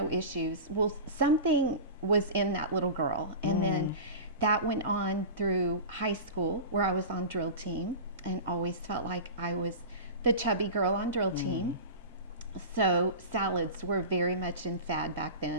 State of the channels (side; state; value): both; inverted; correlation -0.30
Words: issues. Well, something was in that little girl. And then that went on through high school, where I was on drill team and always felt like I was the chubby girl on drill team. So salads were very much in fad back